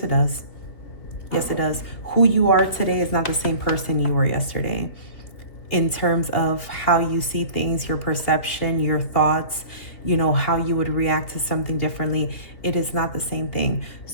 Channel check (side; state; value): right; late; 2.8 ms